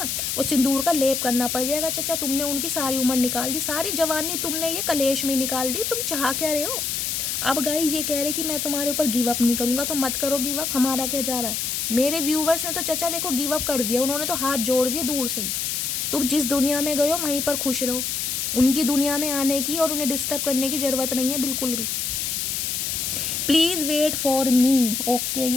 वो सिंदूर का लेप करना पड़ जाएगा। चचा तुमने उनकी सारी उम्र निकाल दी, सारी जवानी तुमने ये कलेश में निकाल दी, तुम चाह क्या रहे हो। अब गाइज ये कह रहे कि मैं तुम्हारे ऊपर गिव अप नहीं करूँगा, तो मत करो गिव अप, हमारा क्या जा रहा है। मेरे व्यूवर्स ने तो चचा देखो गिव अप कर दिया, उन्होंने तो हाथ जोड़ दिए दूर से ही। तुम जिस दुनिया में गए हो वहीं पर खुश रहो, उनकी दुनिया में आने की और उन्हें डिस्टर्ब करने की ज़रूरत नहीं है बिल्कुल भी। Please wait for me, okay.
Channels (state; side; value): noise; left; hiss, 1 dB below the sound